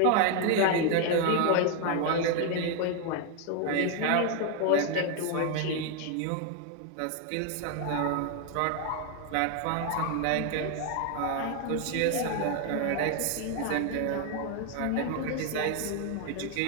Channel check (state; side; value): different; both; correlation 0.01